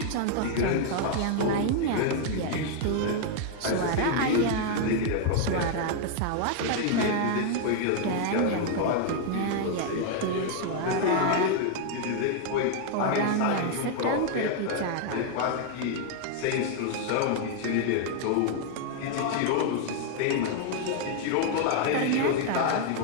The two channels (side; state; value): both; different; correlation 0.00